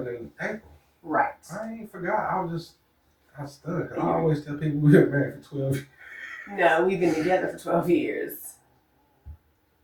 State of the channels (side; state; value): both; identical; correlation 1.00